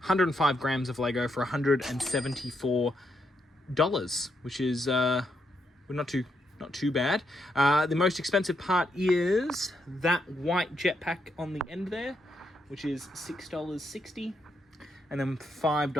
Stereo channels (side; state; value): both; normal; correlation 0.79